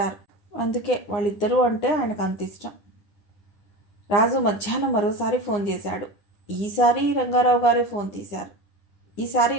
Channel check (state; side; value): late; right; 9.7 ms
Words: అందుకే వాళ్ళిద్దరూ అంటే ఆయనకు అంత ఇష్టం. రాజు మధ్యాహ్నం మరోసారి ఫోన్ చేశాడు. ఈసారి రంగారావు గారే ఫోన్ తీశారు. ఈసారి